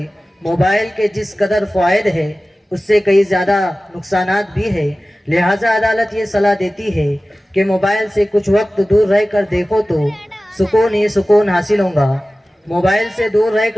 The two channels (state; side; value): normal; both; correlation 0.97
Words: मोबाइल के जिस कदर फ़ायदे हैं उससे कई ज़्यादा नुकसानात भी है। लिहाजा अदालत ये सलाह देती है कि मोबाइल से कुछ वक्त दूर रहकर देखो तो सुकून ही सुकून हासिल होगा। मोबाइल से दूर